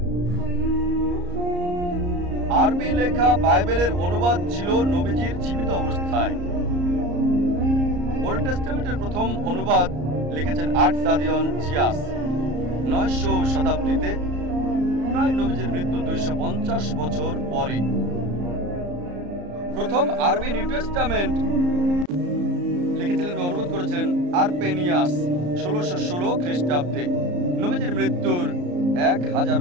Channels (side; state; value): left; late; 34 ms